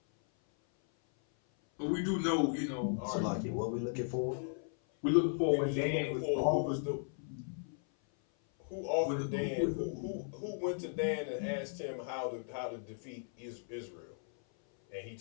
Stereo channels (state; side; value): silent; right; 54 dB below the other